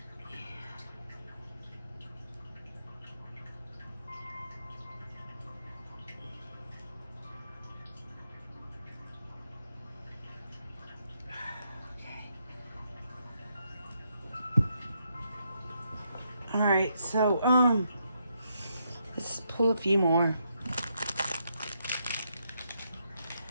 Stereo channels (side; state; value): both; inverted; correlation -0.78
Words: Alright, so, let's pull a few more.